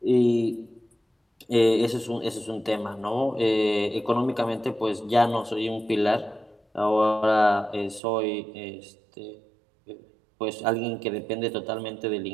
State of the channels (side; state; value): left; drops out; at 8.0 s